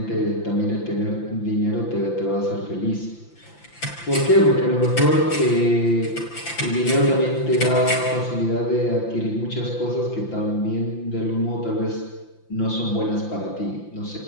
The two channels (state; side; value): late; right; 5.9 ms